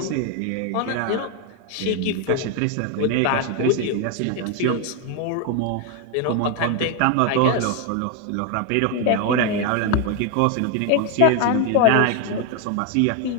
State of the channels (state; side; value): different; both; correlation 0.01